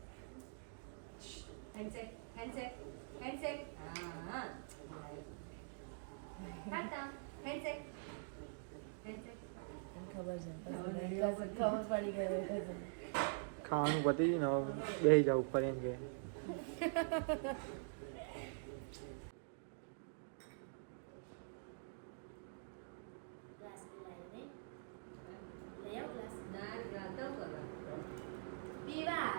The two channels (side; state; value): left; silent; digital silence